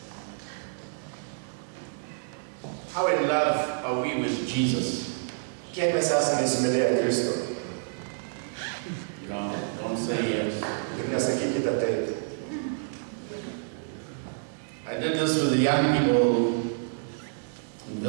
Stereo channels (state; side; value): silent; left; digital silence